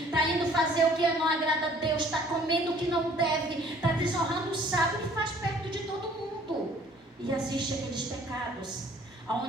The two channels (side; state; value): both; normal; correlation 0.56